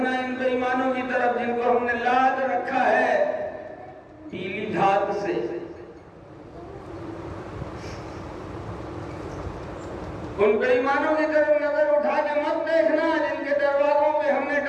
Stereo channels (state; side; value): identical; both; correlation 1.00